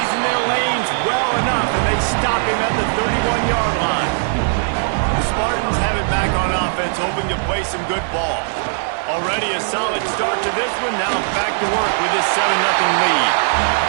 in their lanes well enough, and they stop him at the 31-yard line. The Spartans have it back on offense, hoping to play some good ball. Already a solid start to this one. Now back to work with this 7-0 lead.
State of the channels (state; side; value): silent; left; 64 dB below the other